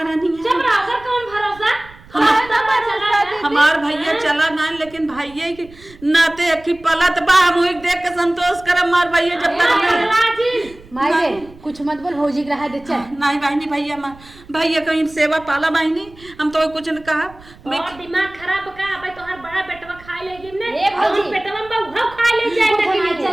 नहीं है चुप रहो कर कौन भरोसा हमार भैया चला ना लेकिन भैया के नाते की पलत बा हम देख के संतोष करम मार भैया जब तक अल्लाह जी माई रे कुछ मत बोल भौजी के रहा दे चल। नहीं बहनी भैया भैया कहीं सेवा पाला बहनी हम तो कुछ न कहा और दिमाग खराब का भाई तोहर बड़ा बेटवा खा ले गिन ने ए भौजी। पेटवा में बहु खा ले जाए चल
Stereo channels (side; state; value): right; noise; rumble, 22 dB below the sound